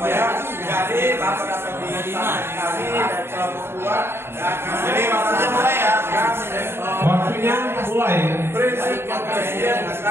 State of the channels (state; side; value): late; left; 0.11 ms